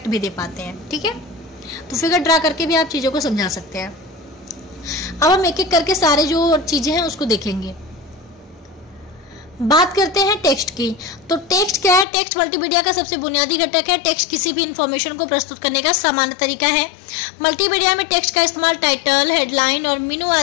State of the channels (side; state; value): right; drops out; at 12.1 s